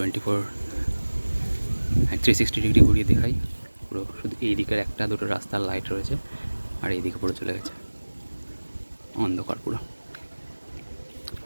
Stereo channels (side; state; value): both; inverted; correlation -1.00